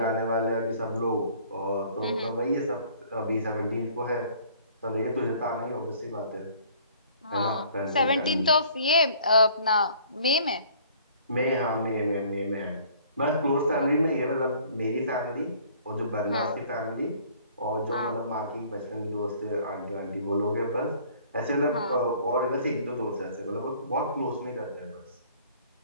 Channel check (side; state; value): both; inverted; correlation -0.55